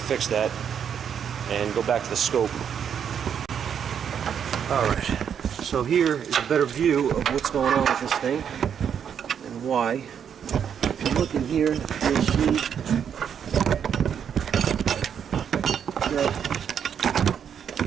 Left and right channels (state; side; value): quieter; left; 8.1 dB